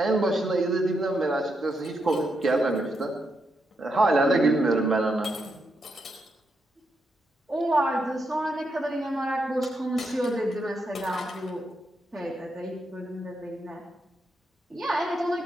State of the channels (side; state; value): both; normal; correlation 0.82